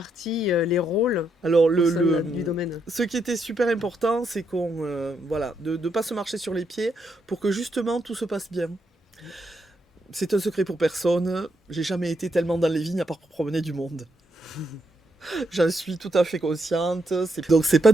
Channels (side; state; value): both; normal; correlation 0.78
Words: les rôles Alors, du domaine? ce qui était super important, c'est de ne pas se marcher sur les pieds pour que justement tout se passe bien. C'est un secret pour personne, j'ai jamais été tellement dans les vignes à part pour promener du monde. J'en suis tout à fait consciente. Donc c'est pas